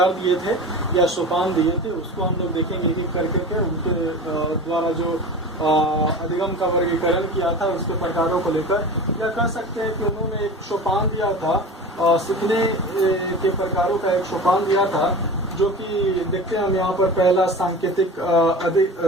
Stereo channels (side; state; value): both; normal; correlation 0.33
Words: दिए थे या सोपान दिए थे उसको हम लोग देखेंगे एक एक करके उनके द्वारा जो अधिगम का वर्गीकरण किया था उसके प्रकारों को लेकर, या कह सकते हैं कि उन्होंने एक सोपान दिया था, सीखने के प्रकारों का एक सोपान दिया था, जो कि देखते हैं हम यहाँ पर पहला सांकेतिक